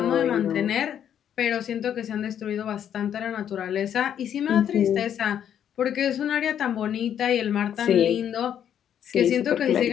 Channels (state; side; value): quieter; right; 9.5 dB